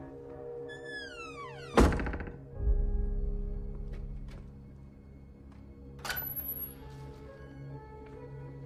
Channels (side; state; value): both; identical; correlation 1.00